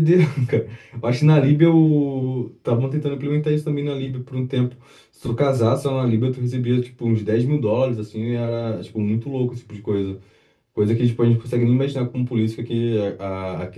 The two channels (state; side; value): identical; both; correlation 1.00